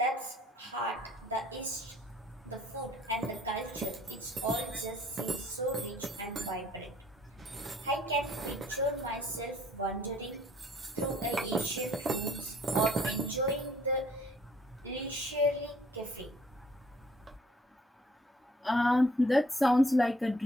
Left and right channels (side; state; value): both; normal; correlation 0.59